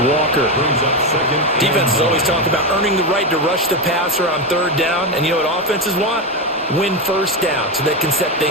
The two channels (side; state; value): both; normal; correlation 0.13